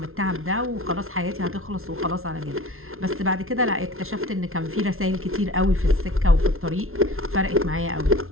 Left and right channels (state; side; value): late; left; 0.62 ms